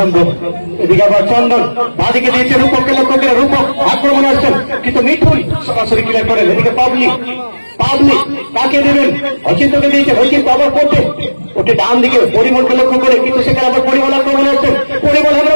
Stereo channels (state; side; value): inverted; both; correlation -1.00